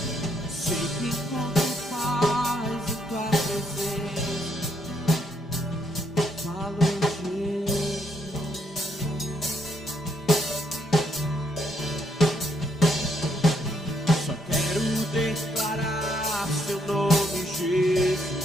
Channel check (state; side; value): normal; both; correlation 0.73